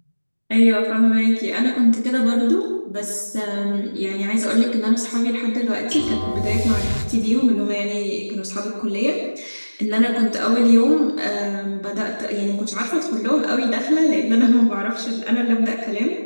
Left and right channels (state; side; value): inverted; both; correlation -1.00